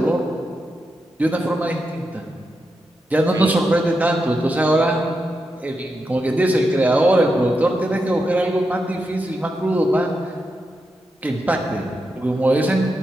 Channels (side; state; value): both; normal; correlation 0.86